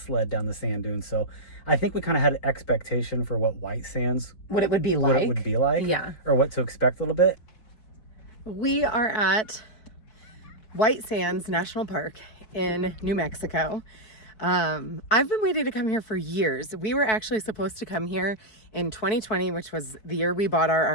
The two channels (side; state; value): right; late; 4.6 ms